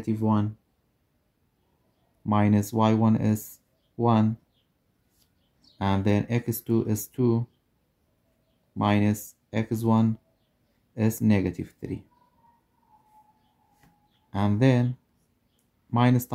minus y1 is 1, and then x2 is 2 minus x1 is -3. And then minus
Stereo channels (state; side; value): identical; both; correlation 1.00